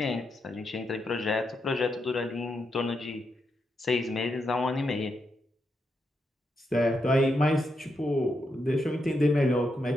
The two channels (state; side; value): normal; both; correlation 0.83